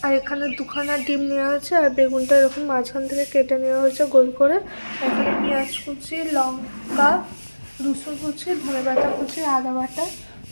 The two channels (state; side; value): inverted; both; correlation -1.00